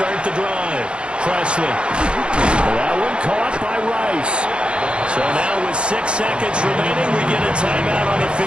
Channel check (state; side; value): late; left; 0.057 ms